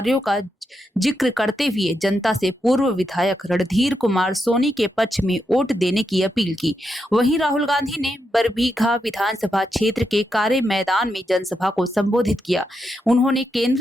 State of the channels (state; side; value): normal; both; correlation 0.84